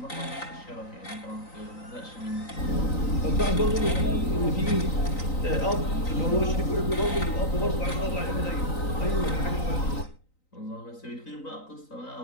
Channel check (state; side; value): late; right; 3.9 ms